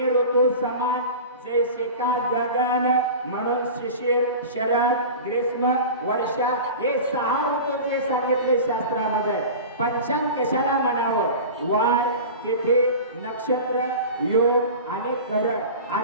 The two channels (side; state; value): both; inverted; correlation -0.33